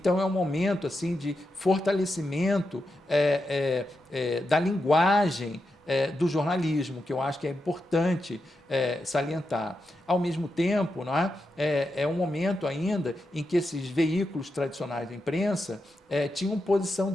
é um momento assim de fortalecimento da linguagem do jornalismo, que eu acho que é importante salientar. Ao mesmo tempo, não é? É um momento ainda em que esses veículos tradicionais da imprensa tinham posição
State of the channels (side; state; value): both; normal; correlation 0.87